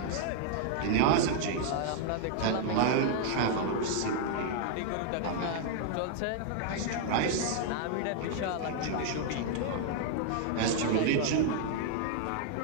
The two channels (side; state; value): both; different; correlation 0.00